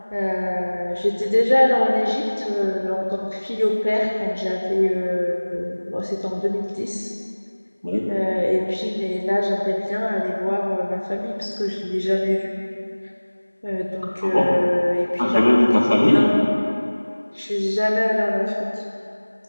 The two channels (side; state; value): both; inverted; correlation -1.00